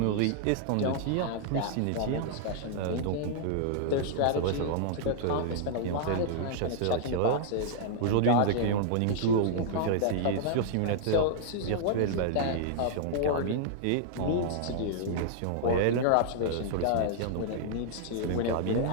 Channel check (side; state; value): both; different; correlation -0.01